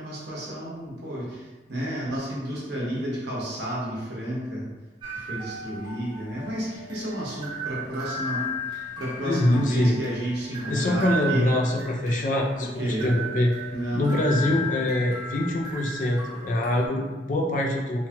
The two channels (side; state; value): both; normal; correlation 0.69